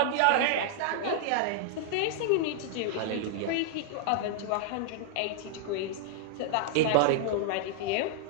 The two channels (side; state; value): both; different; correlation -0.01